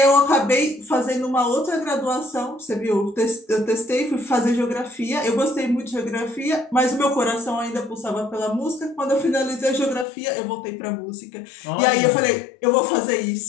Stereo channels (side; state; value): right; drops out; at 10.1 s